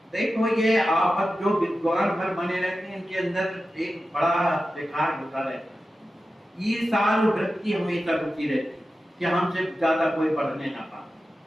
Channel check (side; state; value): both; normal; correlation 0.93